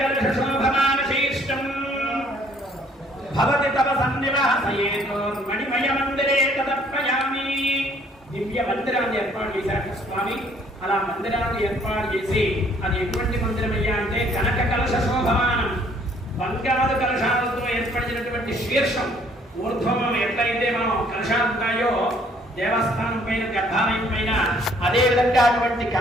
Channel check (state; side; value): normal; both; correlation 0.61